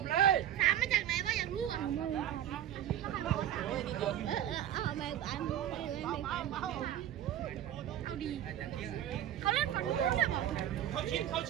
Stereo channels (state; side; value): quieter; left; 11.2 dB